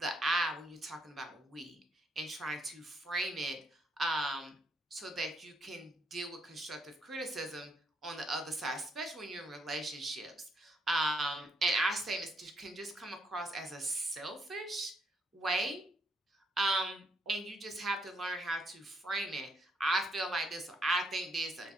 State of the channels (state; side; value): normal; both; correlation 0.74